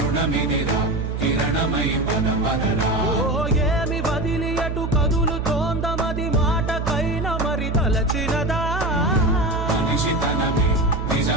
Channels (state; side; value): noise; right; hum, 3 dB below the sound